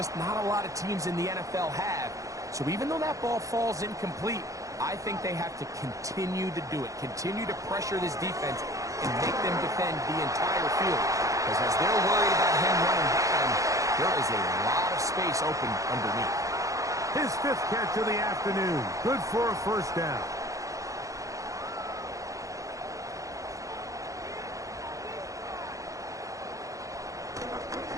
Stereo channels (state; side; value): late; left; 0.16 ms